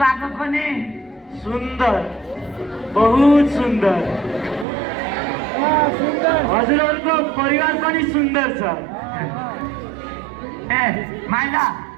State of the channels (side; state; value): left; drops out; at 4.7 s